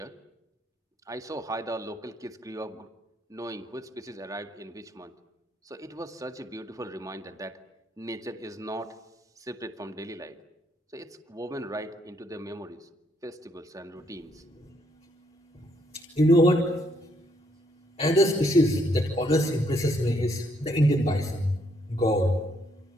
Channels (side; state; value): both; normal; correlation 0.72